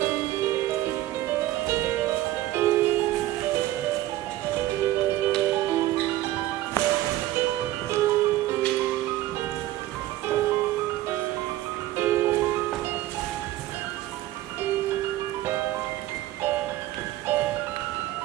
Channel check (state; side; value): quieter; left; 15.3 dB